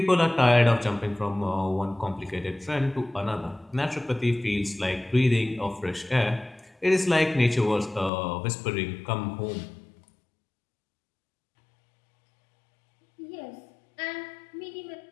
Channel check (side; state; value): right; drops out; at 8.1 s